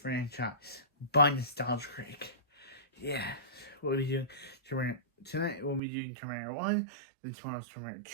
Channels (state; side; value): drops out; left; at 5.8 s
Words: by Nostalgia Creek. Yeah, we'll be doing Terminator. Tonight, we'll be doing Terminator 1, then tomorrow's Terminator